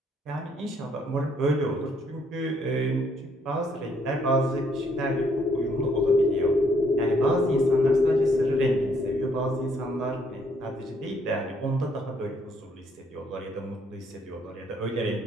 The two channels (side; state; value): both; normal; correlation 0.68